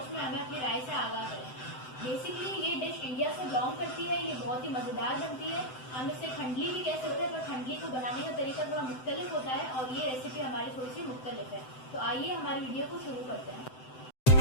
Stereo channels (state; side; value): late; right; 7.8 ms